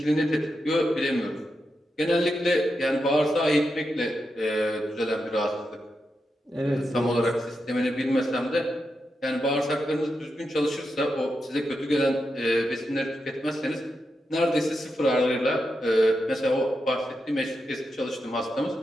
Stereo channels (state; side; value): normal; both; correlation 0.87